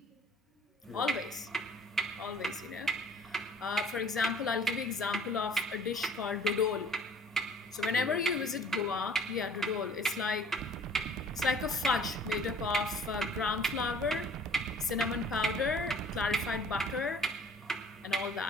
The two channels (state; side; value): normal; both; correlation 0.53